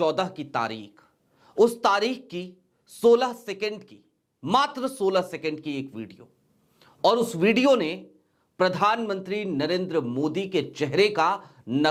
की तारीख, उस तारीख की 16 सेकंड की, मात्र 16 सेकंड की एक वीडियो, और उस वीडियो ने प्रधानमंत्री नरेंद्र मोदी के चेहरे का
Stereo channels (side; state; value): both; identical; correlation 1.00